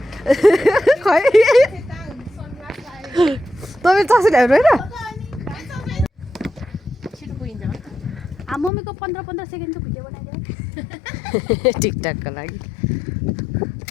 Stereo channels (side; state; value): right; drops out; at 8.7 s